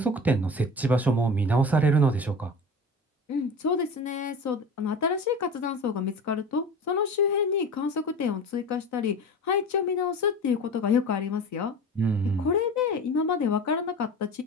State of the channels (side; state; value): both; normal; correlation 0.33